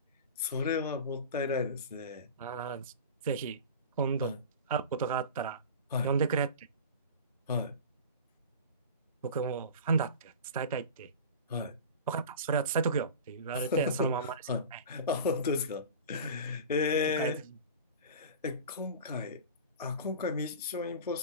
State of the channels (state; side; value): inverted; both; correlation -0.33